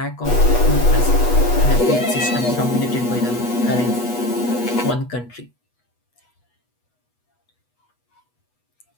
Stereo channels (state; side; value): late; right; 8.2 ms